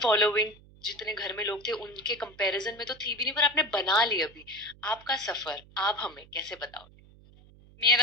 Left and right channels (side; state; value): right; noise; hum, 24 dB below the sound